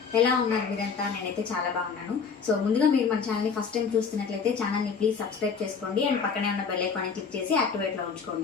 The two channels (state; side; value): quieter; right; 5.8 dB